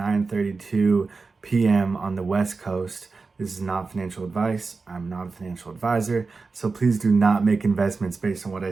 p.m. on the West Coast. This is not financial advice. I'm not a financial advisor, so please do not make investments based on what I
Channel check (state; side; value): quieter; left; 4.2 dB